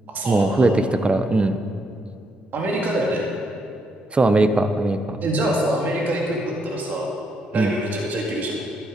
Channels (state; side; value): normal; both; correlation 0.77